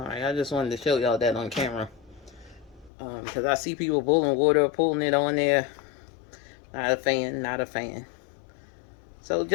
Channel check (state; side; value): drops out; right; at 2.9 s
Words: I just wanted to show y'all that on camera, because I see people boiling water, pulling it on there. Not a fan, not a fan. So